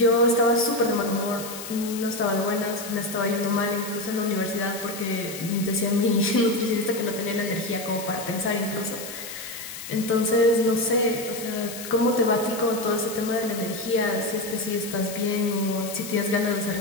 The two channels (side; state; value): left; noise; hiss, 10 dB below the sound